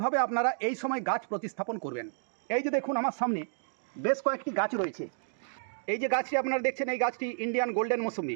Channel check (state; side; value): silent; left; digital silence